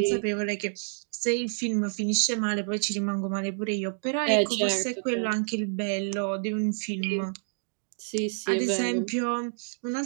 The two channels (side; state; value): left; silent; digital silence